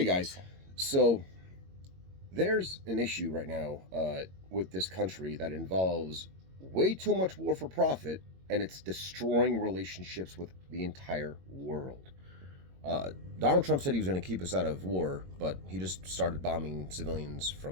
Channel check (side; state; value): left; late; 22 ms